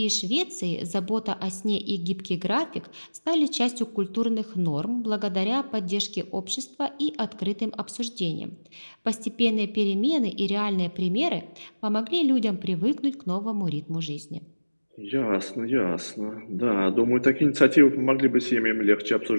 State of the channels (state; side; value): inverted; both; correlation -1.00